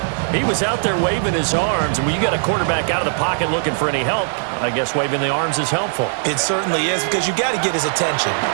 He was out there waving his arms, and when you got a quarterback out of the pocket looking for any help, I guess waving the arms is helpful. It certainly is, because you got to get his attention,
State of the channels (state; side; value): silent; left; digital silence